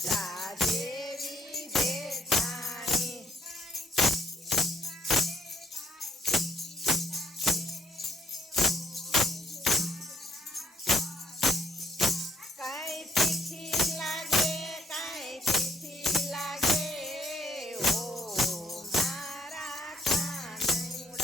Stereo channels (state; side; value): normal; both; correlation 0.66